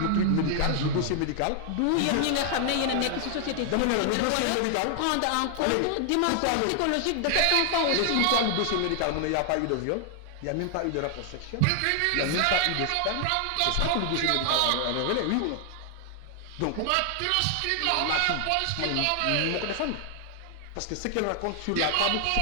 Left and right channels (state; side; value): different; both; correlation 0.00